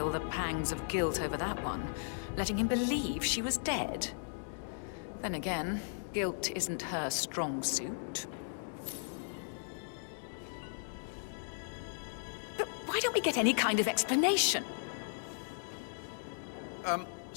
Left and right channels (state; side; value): silent; right; digital silence